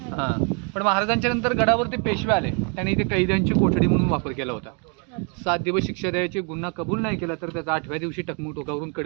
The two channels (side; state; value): left; quieter; 37.4 dB